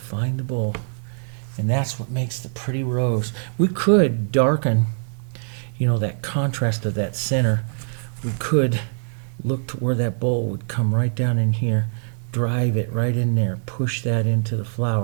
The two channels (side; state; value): left; silent; 63 dB below the other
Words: the bowl. And that's what makes the pretty rose. We could darken, you know, that contrast of that center. We could look to where that bowl would come right down in here, drive it right in there, push that into the